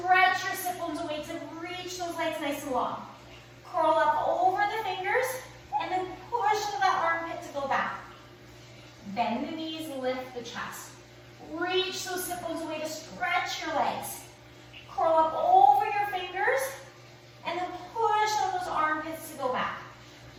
your sit bones away to reach those legs nice and long. Curl up over the fingers, and then push to that armpit to go back. Bend the knees, lift the chest. Reach those sit bones away to stretch your legs. Curl up over your fingers, and then push on those armpits to go back.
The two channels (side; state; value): both; identical; correlation 1.00